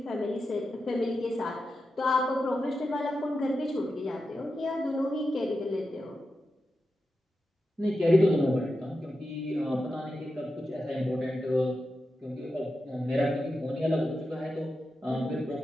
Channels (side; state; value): both; normal; correlation 0.90